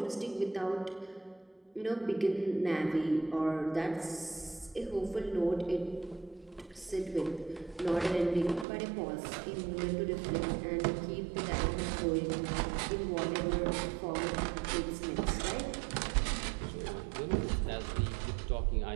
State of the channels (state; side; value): drops out; left; at 8.7 s